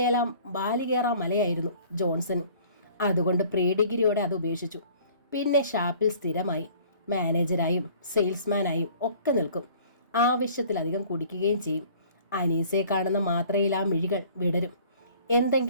മലയായിരുന്നു ജോൺസൺ. അതുകൊണ്ട് പ്രീ ഡിഗ്രിയോടെ അത് ഉപേക്ഷിച്ചു. പിന്നെ ഷാപ്പിൽ സ്ഥിരമായി മാനേജരായും സെയിൽസ്മാനായും ഒക്കെ നിൽക്കും. ആവശ്യത്തിലധികം കുടിക്കുകയും ചെയ്യും. അനീസയെ കാണുന്ന മാത്രയിൽ ആ മിഴികൾ വിടരും.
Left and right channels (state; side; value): inverted; both; correlation -0.52